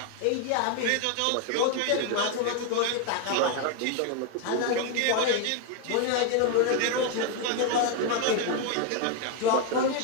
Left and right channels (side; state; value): both; different; correlation 0.01